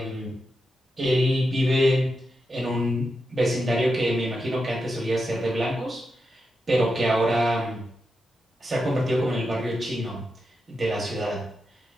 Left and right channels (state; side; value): normal; both; correlation 0.87